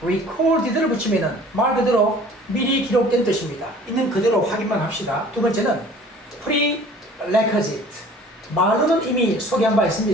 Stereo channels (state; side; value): normal; both; correlation 0.49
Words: recorded를 붙이면은 말 그대로 미리 기록된 뜻입니다. 있는 그대로 확인만 합시다. 두 번째는 prerequisite. 말로는 이미 소개한 바